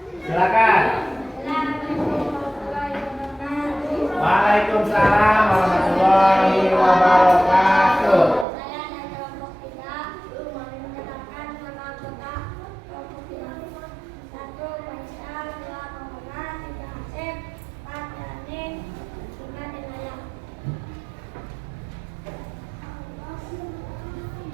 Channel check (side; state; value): left; drops out; at 8.5 s